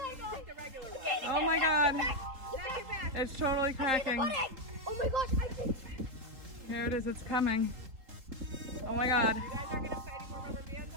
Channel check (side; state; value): left; late; 3.8 ms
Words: god. Oh my god. It's totally cracking. Oh my gosh, I think. Here it is, it's coming. Oh my god. You guys are gonna put any more rubber bands